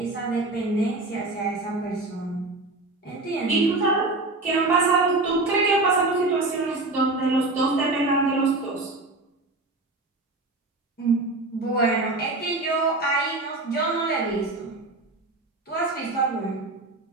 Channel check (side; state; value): left; quieter; 3.1 dB